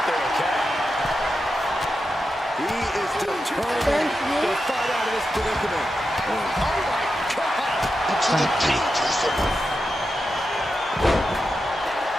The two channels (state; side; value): normal; both; correlation 0.89